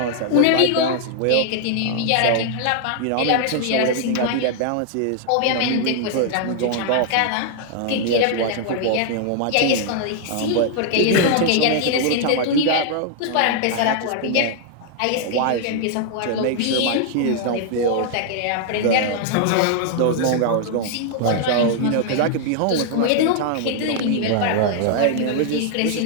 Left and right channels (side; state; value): both; different; correlation -0.01